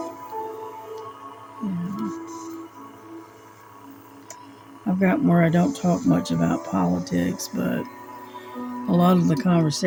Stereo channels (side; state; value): both; identical; correlation 1.00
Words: Yeah. I've gotten where I don't talk much about politics, but a lot of the